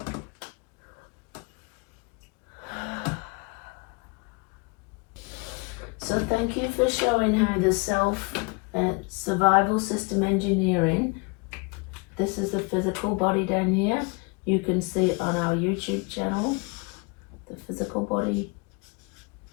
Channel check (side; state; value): right; quieter; 30.4 dB